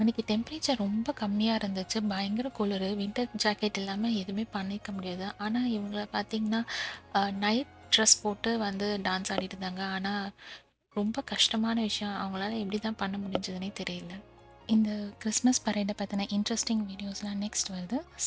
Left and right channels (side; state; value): both; identical; correlation 1.00